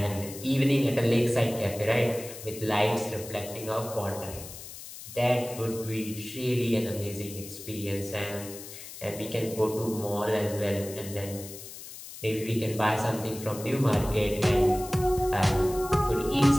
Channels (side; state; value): left; noise; hiss, 13 dB below the sound